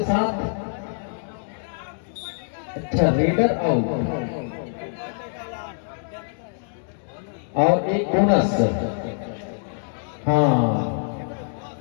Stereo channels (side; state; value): right; silent; digital silence